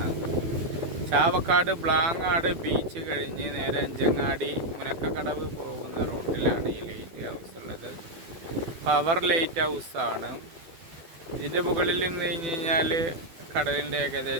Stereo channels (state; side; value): late; left; 12 ms